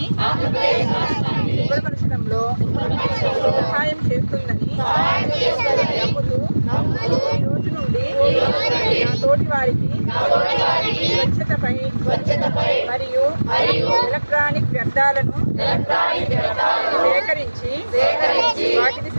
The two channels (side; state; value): both; inverted; correlation -1.00